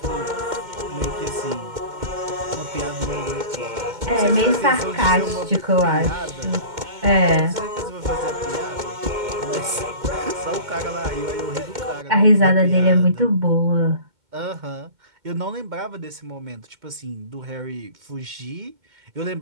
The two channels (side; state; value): left; late; 2.1 ms